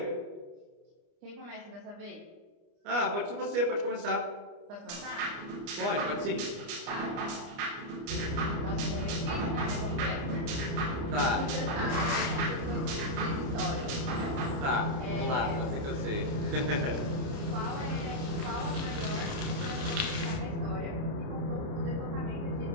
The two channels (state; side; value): late; left; 29 ms